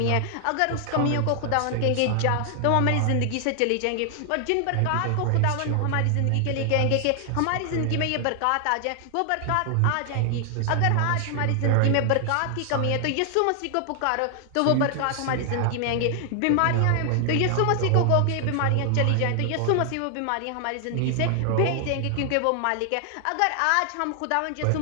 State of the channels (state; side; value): different; both; correlation 0.00